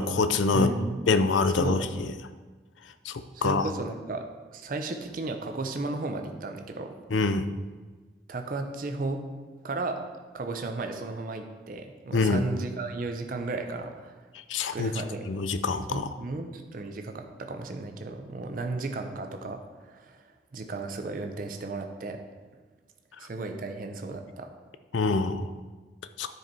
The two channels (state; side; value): normal; both; correlation 0.37